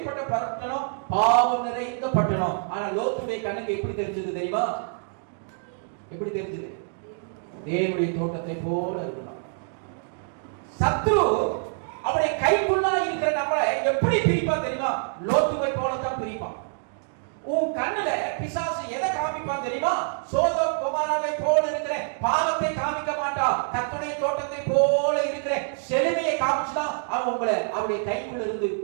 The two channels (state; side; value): silent; left; 61 dB below the other